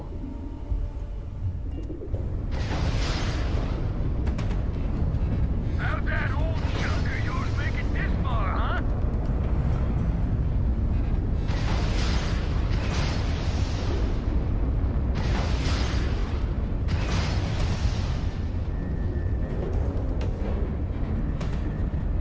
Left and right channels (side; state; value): both; identical; correlation 1.00